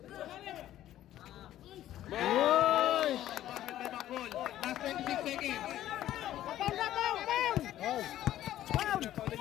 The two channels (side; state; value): right; quieter; 13.0 dB